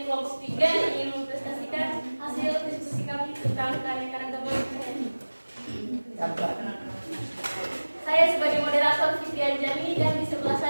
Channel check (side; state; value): both; inverted; correlation -1.00